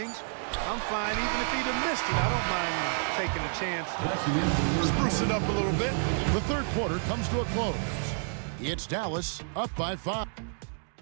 I'm fine even if he'd have missed it. I don't mind him taking a chance to spruce it up a little bit. The third quarter comes to a close. It's Dallas up by 5.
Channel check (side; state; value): left; silent; 58 dB below the other